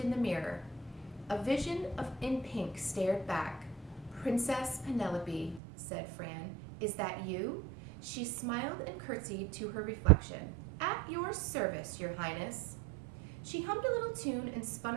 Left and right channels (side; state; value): left; drops out; at 5.6 s